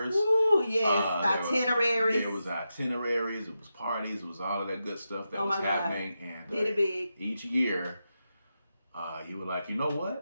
Ooh, yes. Itineraries. There was itineraries. It was parties. It was all of that good stuff that was happening. God. And did it big. Each year, you were like, you know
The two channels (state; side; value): inverted; both; correlation -0.88